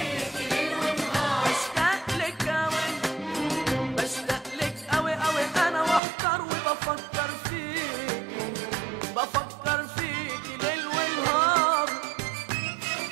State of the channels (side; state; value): left; drops out; at 6.0 s